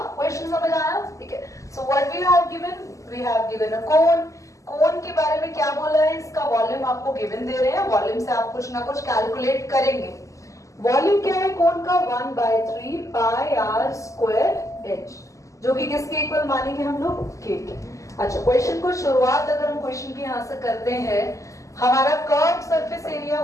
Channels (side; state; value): right; late; 0.16 ms